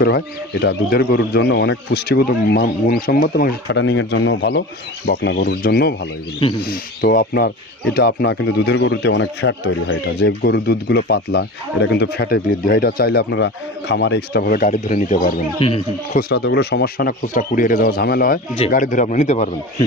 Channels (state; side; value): normal; both; correlation 0.33